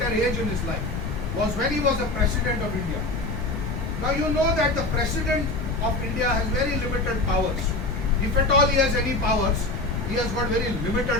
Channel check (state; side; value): noise; left; rumble, 4 dB below the sound